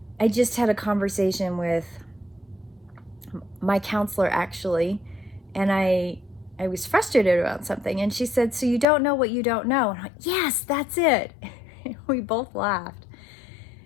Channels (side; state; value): right; drops out; at 8.8 s